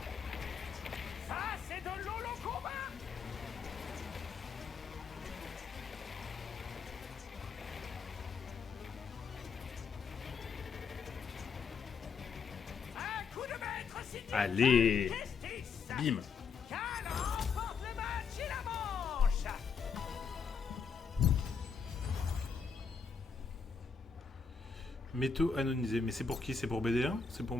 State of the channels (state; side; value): quieter; right; 5.6 dB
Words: Ça, c'est de l'holo combat! Un coup de maître signé Allez! Justice! Bim! Cal remporte le match et la manche! Métaux anonisés. Mais c'est pour qui? C'est pour BD1? C'est pour,